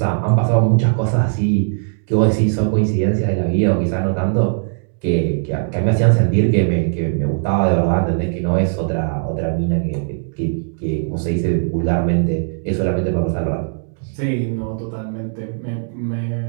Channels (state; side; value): silent; left; digital silence